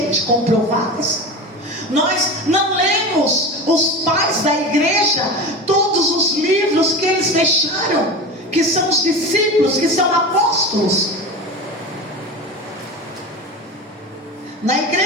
comprovadas. Nós não lemos os pais da igreja, todos os livros que eles deixaram, que são os discípulos, que são apóstolos. Na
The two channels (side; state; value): both; normal; correlation 0.28